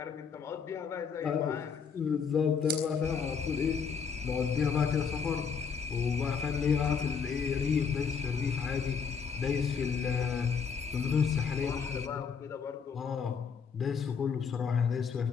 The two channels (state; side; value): quieter; right; 6.3 dB